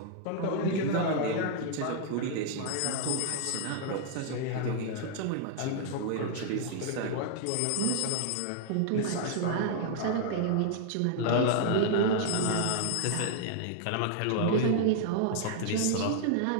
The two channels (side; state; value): both; different; correlation -0.01